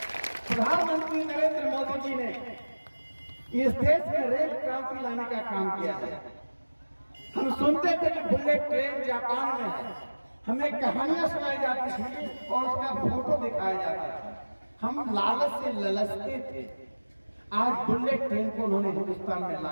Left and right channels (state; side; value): inverted; both; correlation -1.00